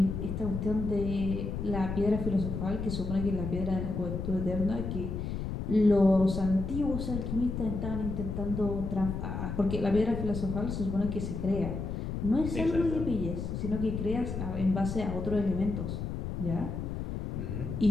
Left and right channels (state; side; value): noise; left; rumble, 4 dB below the sound